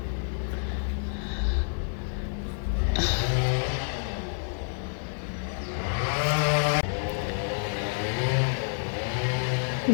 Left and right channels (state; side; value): silent; right; digital silence